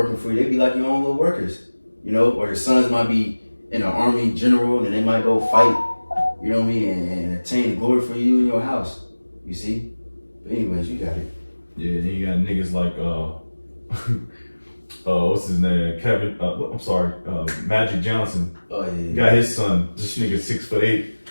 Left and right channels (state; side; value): inverted; both; correlation -1.00